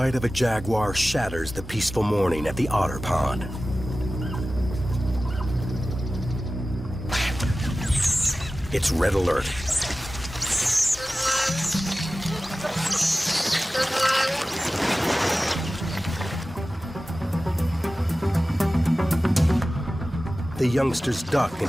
of a jaguar shatters the peaceful morning at the otter pond. It's red alert. The youngsters duck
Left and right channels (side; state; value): both; normal; correlation 0.96